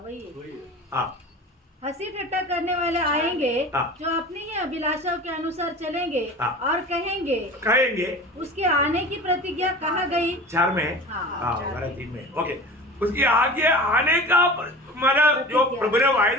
वही। हाँ हंसी ठट्टा करने वाले आएंगे हाँ। जो अपनी ही अभिलाषाओं के अनुसार चलेंगे हाँ। और कहेंगे कहेंगे उसके आने की प्रतिज्ञा कहाँ गई। 4 में है। हाँ, हाँ 4 हमारा 3 में ओके। उसके आगे आने का मतलब जो प्रभु ने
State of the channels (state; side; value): normal; both; correlation 0.37